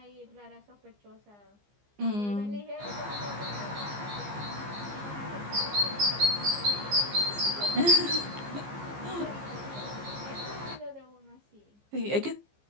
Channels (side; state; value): left; late; 15 ms